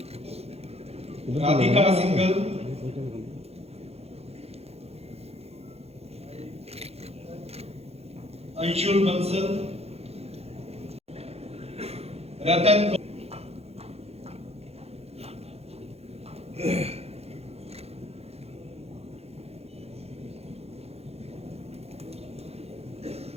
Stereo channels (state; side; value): late; left; 0.30 ms